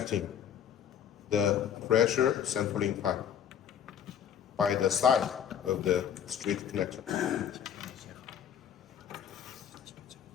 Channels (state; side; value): quieter; right; 8.7 dB